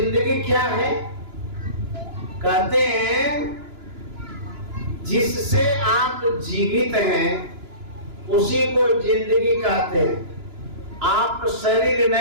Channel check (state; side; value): late; left; 2.9 ms